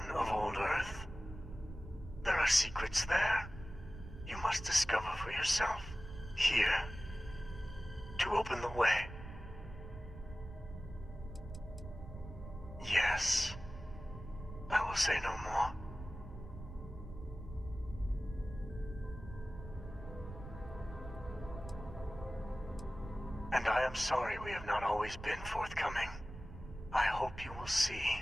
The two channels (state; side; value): noise; right; rumble, 12 dB below the sound